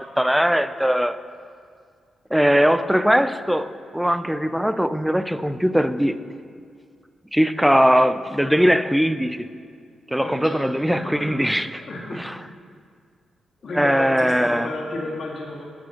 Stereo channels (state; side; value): normal; both; correlation 0.98